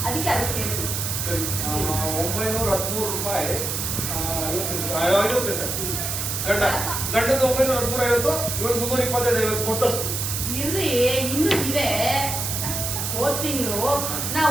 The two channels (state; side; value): noise; right; hiss, 2 dB below the sound